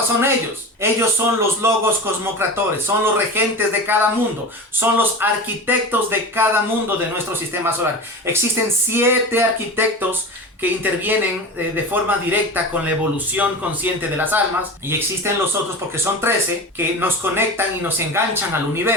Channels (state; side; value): normal; both; correlation 0.29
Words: son ellos. Ellos son los logos cosmocratores, son los regentes de cada mundo, son los arquitectos de cada mundo de nuestro sistema solar. Existen 7 arquitectos que intervienen de forma directa con la evolución consciente de las almas, y existen los otros, porque son 13, que nos conectan y nos enganchan al